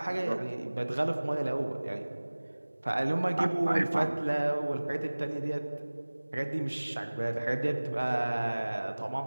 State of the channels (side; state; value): both; inverted; correlation -1.00